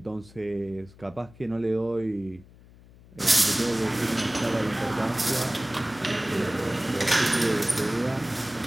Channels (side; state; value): left; noise; hum, 23 dB below the sound